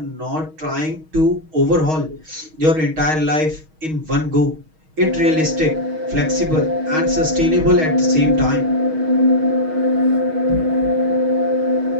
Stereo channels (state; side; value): late; left; 6.3 ms